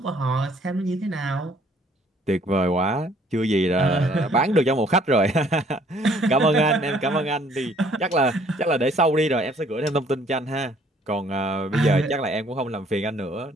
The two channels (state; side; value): normal; both; correlation 0.60